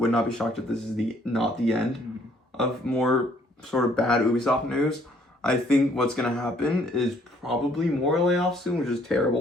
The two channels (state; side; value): normal; both; correlation 0.63